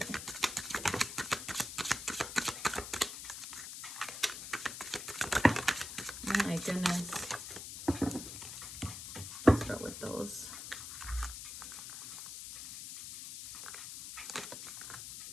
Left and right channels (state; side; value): noise; left; hiss, 9 dB below the sound